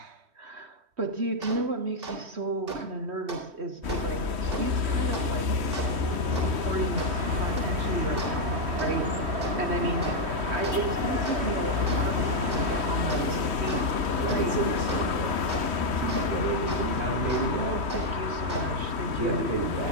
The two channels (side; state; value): left; late; 3.1 ms